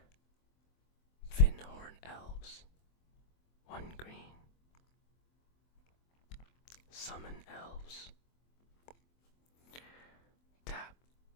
Finhorn Elves. 1 green. Summon Elves. Tap,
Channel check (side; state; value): right; late; 24 ms